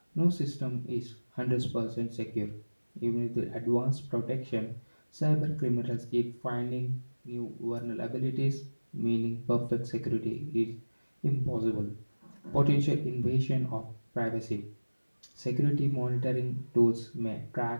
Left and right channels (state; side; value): inverted; both; correlation -1.00